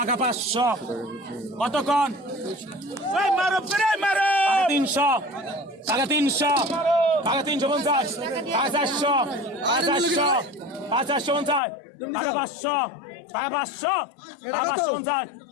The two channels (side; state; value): right; drops out; at 11.6 s